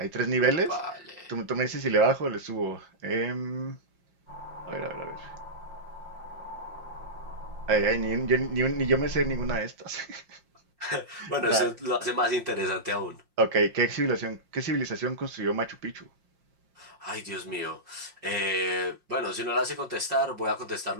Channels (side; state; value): left; late; 5.6 ms